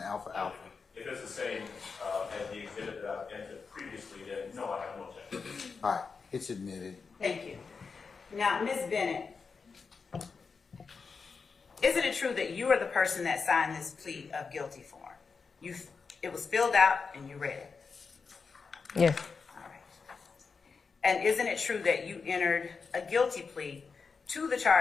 Alpha Alpha? If it's the same as the exhibit that I've entered previously, then no, I have no objection. All right, it's admitted. Thank you. Now, Ms. Bennett, isn't it true that you are the person that signed this plea of guilty form? It was filled out and you read it. Yes, All right. And isn't it true that you entered a guilty plea to the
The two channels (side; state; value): right; quieter; 5.1 dB